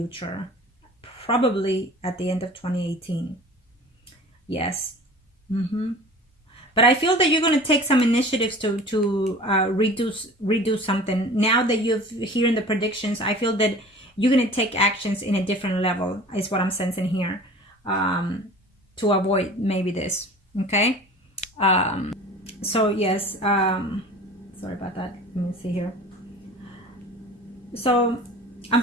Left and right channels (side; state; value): both; normal; correlation 0.42